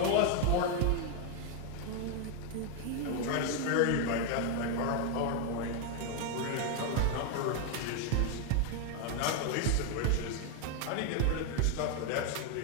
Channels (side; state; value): both; different; correlation 0.01